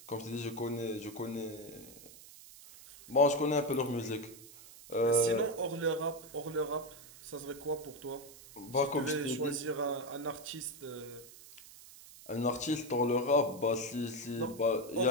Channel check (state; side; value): noise; right; hiss, 18 dB below the sound